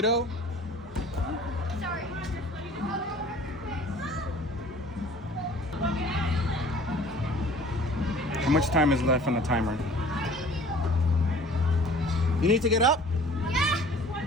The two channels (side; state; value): both; normal; correlation 0.49